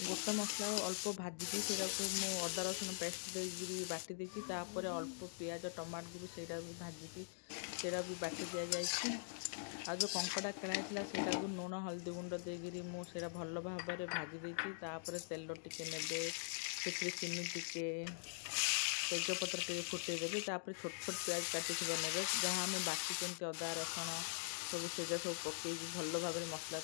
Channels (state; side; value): silent; right; digital silence